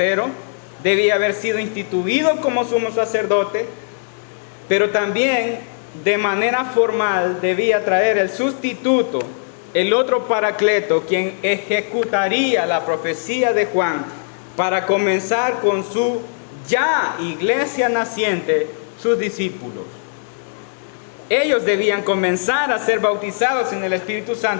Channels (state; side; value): silent; right; digital silence